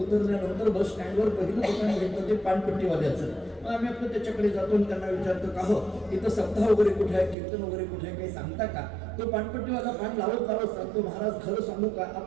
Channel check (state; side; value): drops out; left; at 7.4 s